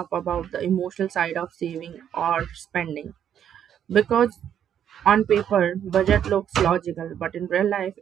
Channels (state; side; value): quieter; left; 9.4 dB